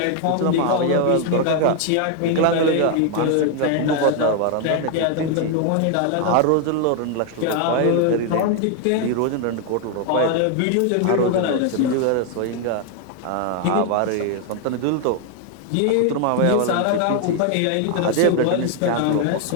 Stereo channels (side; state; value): both; different; correlation 0.00